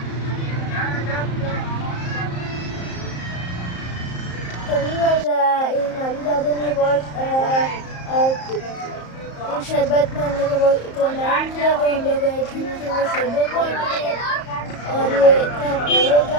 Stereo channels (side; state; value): right; late; 34 ms